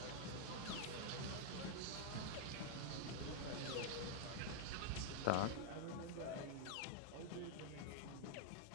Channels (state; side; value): different; both; correlation 0.00